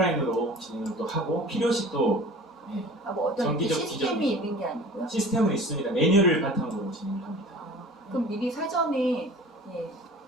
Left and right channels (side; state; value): both; normal; correlation 0.42